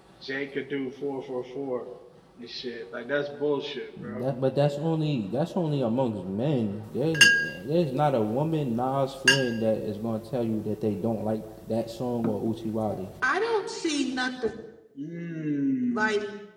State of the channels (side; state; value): both; identical; correlation 1.00